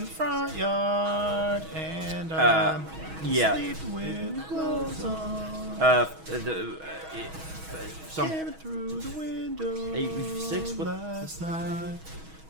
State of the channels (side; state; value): left; late; 6.2 ms